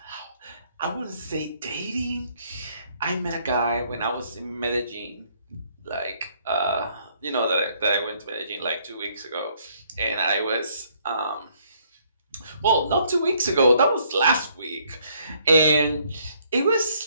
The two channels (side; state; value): both; inverted; correlation -0.66